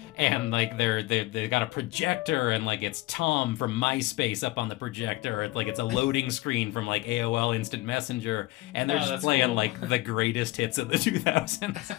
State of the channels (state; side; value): quieter; right; 19.5 dB